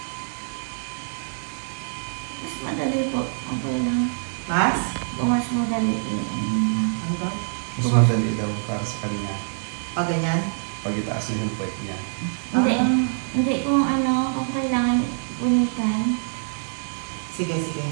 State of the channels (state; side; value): silent; left; 60 dB below the other